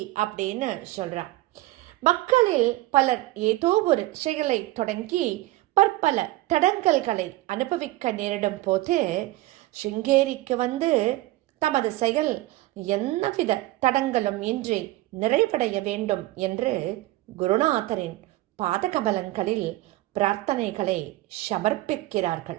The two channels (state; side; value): quieter; left; 18.0 dB